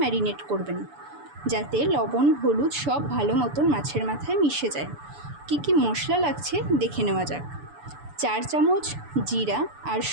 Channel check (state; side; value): late; left; 6.9 ms